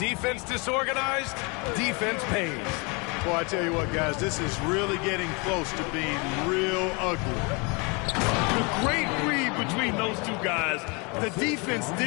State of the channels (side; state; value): right; quieter; 30.3 dB